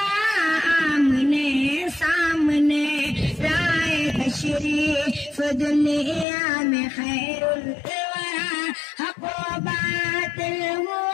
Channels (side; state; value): right; drops out; at 6.2 s